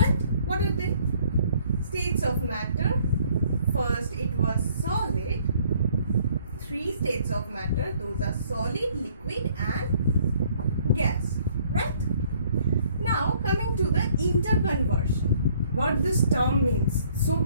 What are they? States of matter. First it was solid. 3 states of matter, those are solid, liquid and gas, right? Now coming to the interconversion, what this term means, so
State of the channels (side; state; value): both; inverted; correlation -0.62